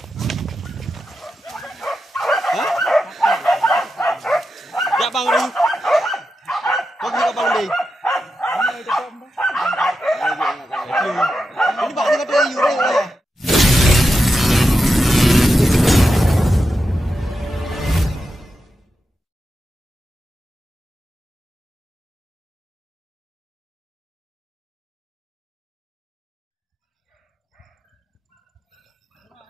Dạ băng đi. Có gì có băng đi. Ini bạn đi cái gì đây?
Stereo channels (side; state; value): both; normal; correlation 0.89